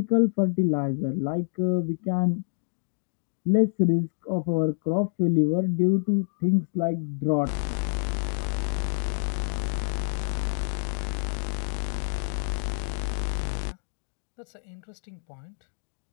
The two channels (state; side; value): silent; right; digital silence